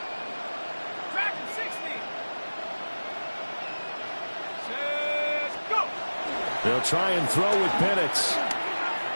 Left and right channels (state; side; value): inverted; both; correlation -1.00